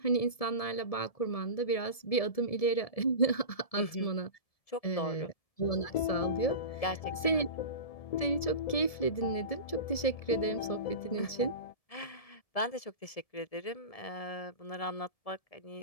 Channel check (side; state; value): right; late; 1.7 ms